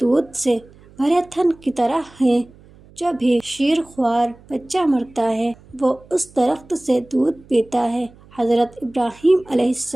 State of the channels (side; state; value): right; noise; hum, 25 dB below the sound